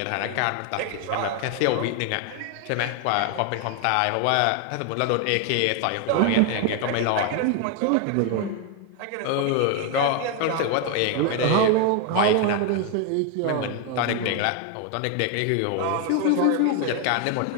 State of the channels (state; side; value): different; both; correlation 0.01